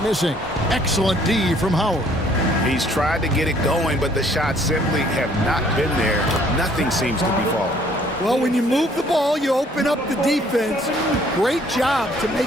missing. Excellent D from Howard. He's tried to get it going, but the shots simply have not been there. Nothing seems to be falling. Well, when you move the ball, you open up the defense. Great job to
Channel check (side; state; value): both; normal; correlation 0.60